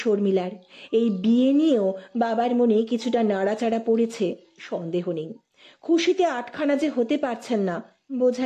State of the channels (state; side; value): identical; both; correlation 1.00